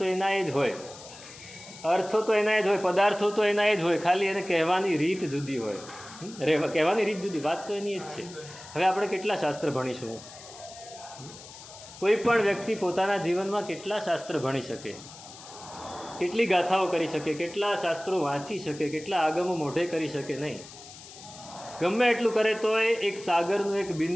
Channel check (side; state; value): left; noise; hiss, 17 dB below the sound